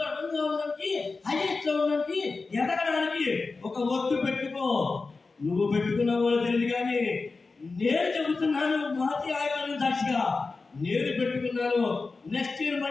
1 గా ఉండడానికి, హైయెస్ట్ లో ఉండడానికి, ఎదగడానికి ఒక ఒట్టు పెట్టుకో. నువ్వు పెట్టుకున్నావో తెలియదు కానీ నేను చెబుతున్నాను, మాతి ఆయుధాలను సాక్షిగా నేను పెట్టుకున్నాను. నెక్స్ట్ ఇయర్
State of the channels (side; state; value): right; quieter; 4.0 dB